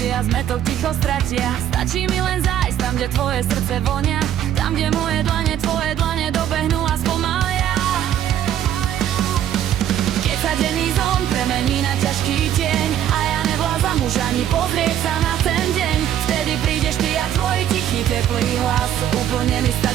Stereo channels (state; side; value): quieter; left; 10.8 dB